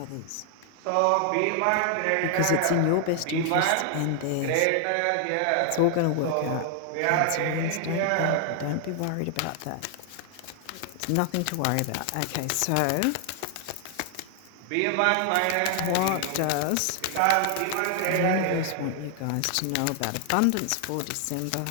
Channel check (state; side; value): different; both; correlation 0.00